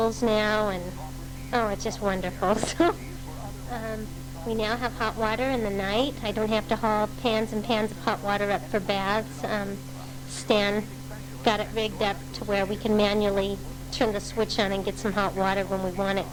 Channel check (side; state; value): both; identical; correlation 1.00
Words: now, and, it's just wonderful. So we now have hot water in the night. I don't have to haul pans and pans of hot water up for baths. Stan got it rigged up to where we can manually turn the switch on and get some hot water when we want it